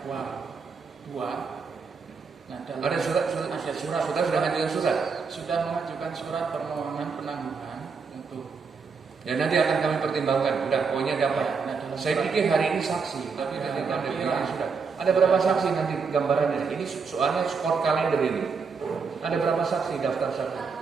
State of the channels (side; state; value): left; quieter; 5.2 dB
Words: 2. Nah, Ada surat, sudah ngajukan surat. Sudah mengajukan surat permohonan penangguhan untuk. Ya nanti akan kami pertimbangkan. Udah, pokoknya dapat. Nah, dalam Saya surat- pikir hari ini saksi, tapi Ya, nanti ada tapi bilang ya. sudah. Ada berapa saksi nanti gambarannya? Ini soalnya skor kalender ini. Ada berapa saksi daftar saksi?